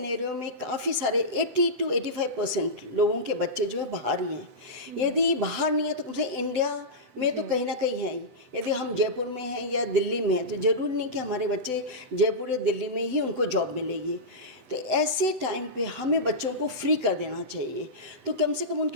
में काफ़ी सारे 80 to 85% लोगों के बच्चे जो है बाहर ही हैं। यदि बाहर नहीं है तो कम से इंडिया में तो कहीं ना कहीं है ही। यदि हम जयपुर में हैं या दिल्ली में हैं तो ज़रूरी नहीं कि हमारे बच्चे जयपुर या दिल्ली में ही उनको जॉब मिलेगी। तो ऐसे टाइम पे हमें बच्चों को फ्री कर देना चाहिए, तो कम से कम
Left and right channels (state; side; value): late; left; 7.9 ms